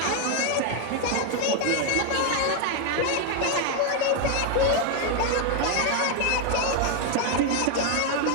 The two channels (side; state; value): both; different; correlation 0.01